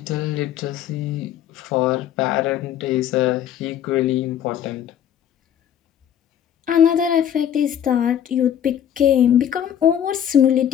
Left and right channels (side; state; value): right; quieter; 9.9 dB